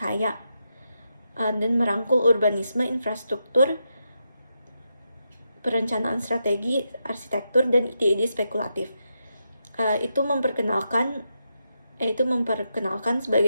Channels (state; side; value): inverted; both; correlation -0.85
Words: dan merangkul urbanisme, infrastruktur, perencanaan strategi, arsitektur, dan ide-ide spekulatif. Itu memperkenalkan